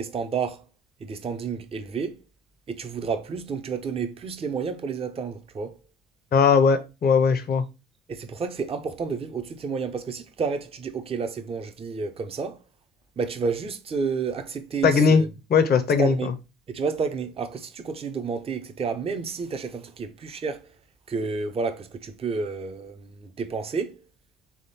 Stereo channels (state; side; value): normal; both; correlation 0.51